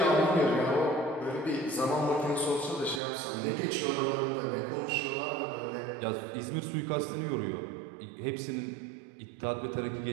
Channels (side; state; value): left; drops out; at 3.0 s